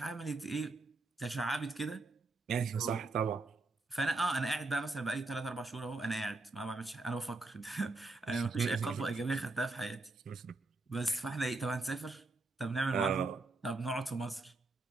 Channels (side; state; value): left; quieter; 3.3 dB